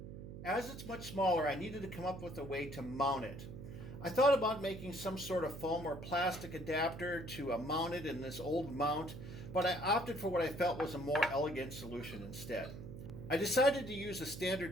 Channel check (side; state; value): right; noise; hum, 10 dB below the sound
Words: As it's much smaller, I needed to come up with a way to mount it. I thought about making some sort of foam or plastic adapter to mount it in this old mount, but I opted for what I felt was a more elegant solution instead. I decided to use a